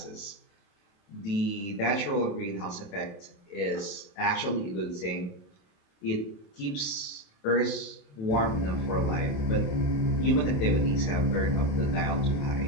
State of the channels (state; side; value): late; right; 28 ms